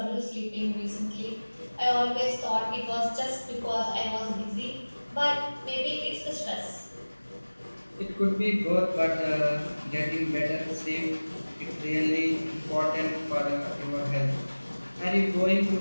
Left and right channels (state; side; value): inverted; both; correlation -1.00